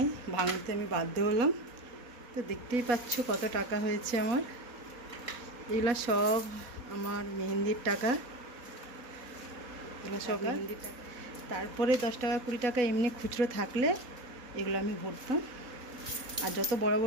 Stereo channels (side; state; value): left; late; 4.1 ms